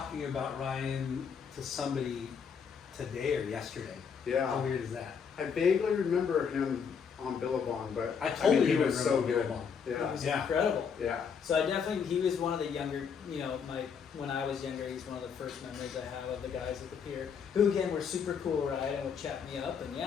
about Ryan to somebody today or yesterday. How Yeah, weird is that? I vaguely remember him on Billabong, but I totally he was remember so good. Billabong. He Yeah, was Yeah. incredible. yeah. So I definitely, he was one of the younger, when I was younger, he's one of the first memories I have of the guys at the pier, who again were super cool, right, and would chat me up, and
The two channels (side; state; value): right; quieter; 6.6 dB